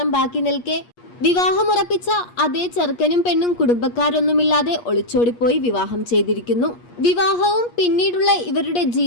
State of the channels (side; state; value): right; late; 8.4 ms